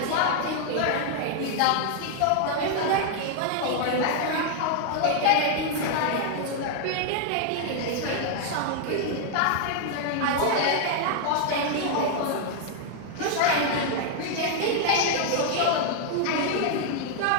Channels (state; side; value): different; both; correlation 0.00